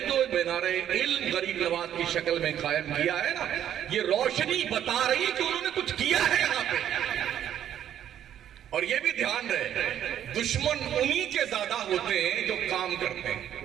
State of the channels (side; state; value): left; quieter; 10.4 dB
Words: جو مینار علم غریب نواز کی شکل میں قائم کیا ہے نا، یہ روشنی بتا رہی کہ انہوں نے کچھ کیا ہے یہاں پہ. اور یہ بھی دھیان رہے دشمن انہی کے زیادہ ہوتے ہیں جو کام کرتے